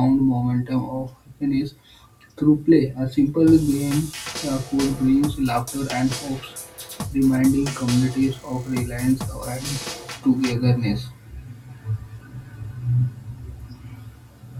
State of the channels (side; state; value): both; identical; correlation 1.00